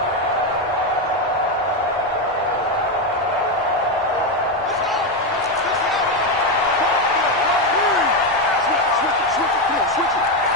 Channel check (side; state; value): both; normal; correlation 0.09